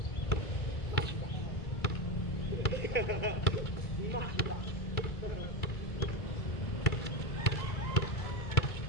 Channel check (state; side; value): late; right; 2.3 ms